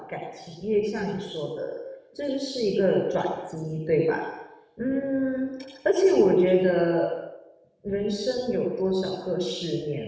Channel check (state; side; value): identical; both; correlation 1.00